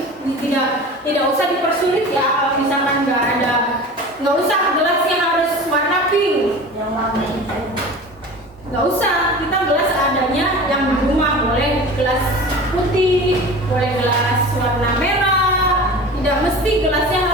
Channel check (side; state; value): both; normal; correlation 0.36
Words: tidak usah dipersulit ya. Kalau misalkan nggak usah gelasnya harus warna pink, nggak usah, kita gelas adanya yang di rumah. Boleh gelas putih, boleh gelas warna merah, tidak mesti gelasnya